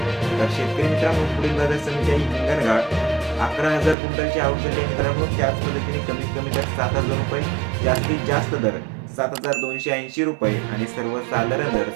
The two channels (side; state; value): left; drops out; at 4.0 s